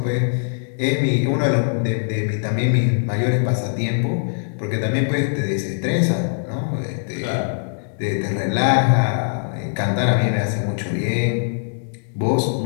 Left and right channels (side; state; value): right; silent; digital silence